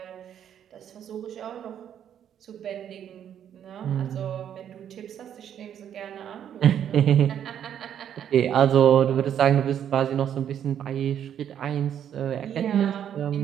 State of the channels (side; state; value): left; quieter; 9.5 dB